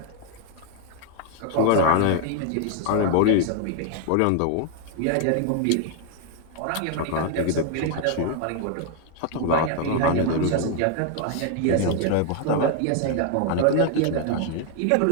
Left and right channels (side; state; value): both; different; correlation 0.00